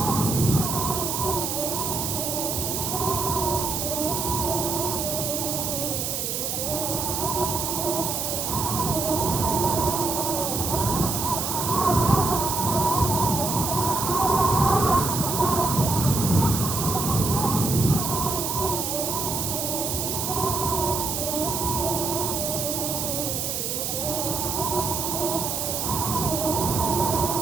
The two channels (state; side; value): noise; right; hiss, 2 dB below the sound